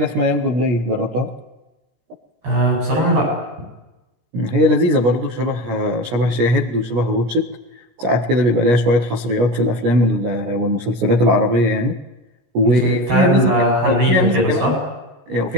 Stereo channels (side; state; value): left; late; 16 ms